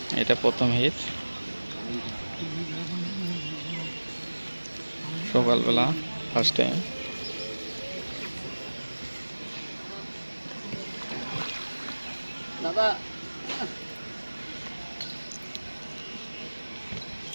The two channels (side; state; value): both; inverted; correlation -1.00